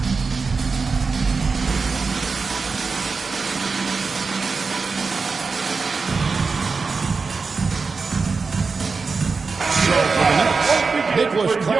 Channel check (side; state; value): left; quieter; 4.6 dB